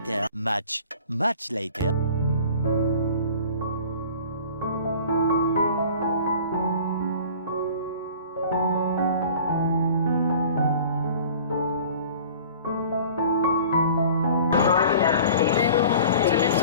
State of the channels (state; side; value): inverted; both; correlation -0.45